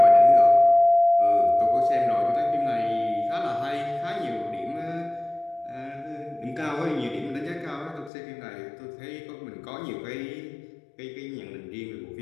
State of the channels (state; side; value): drops out; right; at 8.1 s